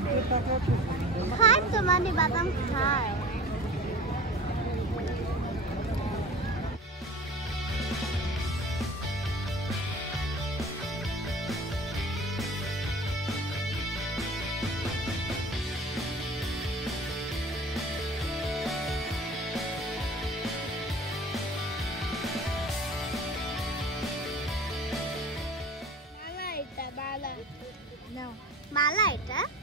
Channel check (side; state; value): both; normal; correlation 0.39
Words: খায় তো মানে বাদাম খায় মালা এটা